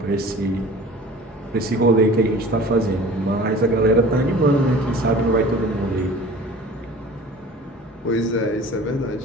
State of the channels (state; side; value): normal; both; correlation 0.43